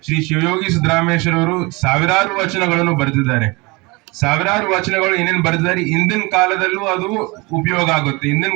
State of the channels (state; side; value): quieter; left; 25.4 dB